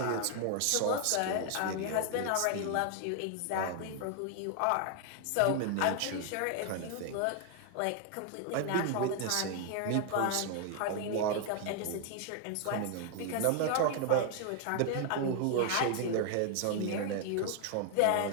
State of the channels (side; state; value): both; different; correlation 0.00